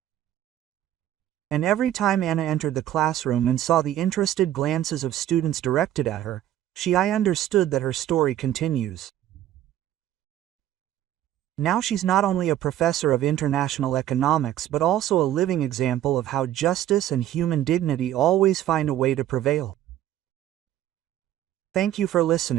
And every time Anna entered the classroom and saw the interested glances of students directed at her, I understood that her story continues. Now she's not only a professor of international economics but also a living example of how justice and human dignity always find a way to prevail. Thank you for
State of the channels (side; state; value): left; quieter; 12.3 dB